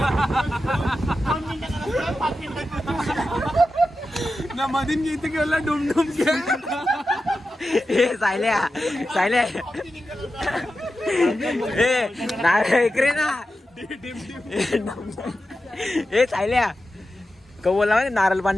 मधीन घेते केवढा डुमडुम सायल्या इकडे ना. हे सायल्या क बोलला म्हणजे नारळ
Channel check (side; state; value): both; normal; correlation 0.91